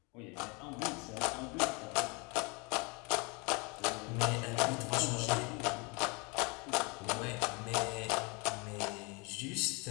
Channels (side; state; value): right; quieter; 30.0 dB